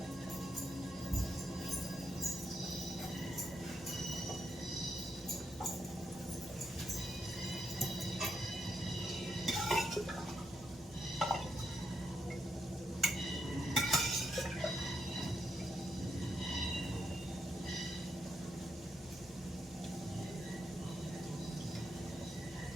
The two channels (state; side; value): normal; both; correlation 0.80